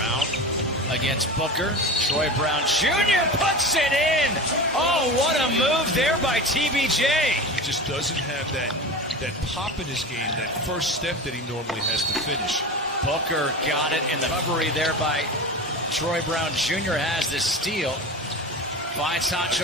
against Booker. Troy Brown Jr. puts it in. Oh, what a move there by TBJ. He just doesn't have that pop in his game, that first step that he normally has to finish. Booker got it in the recovery there by Troy Brown Jr. has the steal. Finds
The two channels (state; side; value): normal; both; correlation 0.29